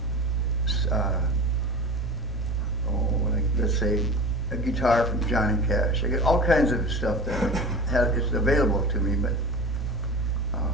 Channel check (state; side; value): normal; both; correlation 0.33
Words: like let's say a guitar from Johnny Cash. I get all kinds of stuff that is available to me, but